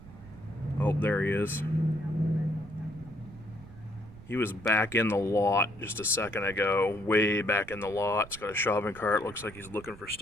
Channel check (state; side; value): noise; right; rumble, 18 dB below the sound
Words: Oh, there he is. He was back in the lot just a second ago, way back in the lot. It's got a shopping cart. Looks like he's looking for